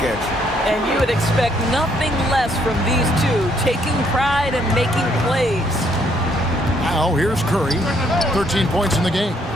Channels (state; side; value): normal; both; correlation 0.69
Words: at you. And you would expect nothing less from these two, taking pride and making plays. Now here's Curry. 13 points in the game.